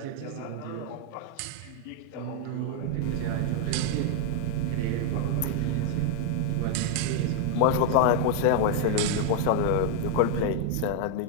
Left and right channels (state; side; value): different; both; correlation 0.00